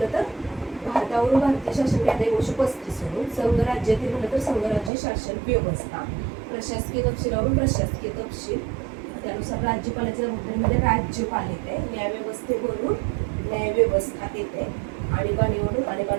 तर भारतावरून भारतीय शासन कायदा 1935 वरून संघ राज्यातील म्हणलं तर संघराज्य शासन व्यवस्था, प्रशासकीय तपशिलावरून प्रशासकीय तपशील, त्यानुसार राज्यपालाच्या जबाबदारीमध्ये राज्यपाल येते, न्यायव्यवस्थेवरून न्यायव्यवस्था येते, आणीबाणीवरून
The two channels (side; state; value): left; drops out; at 4.9 s